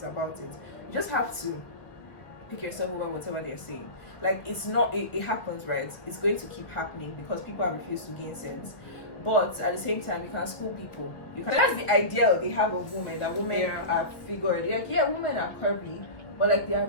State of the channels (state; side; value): late; right; 1.1 ms